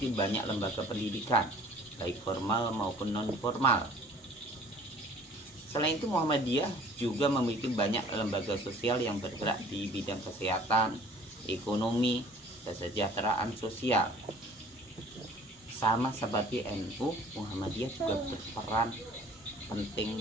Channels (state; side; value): normal; both; correlation 0.51